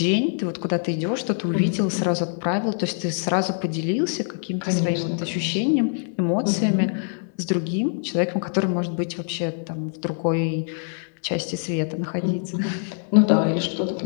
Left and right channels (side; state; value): right; silent; 63 dB below the other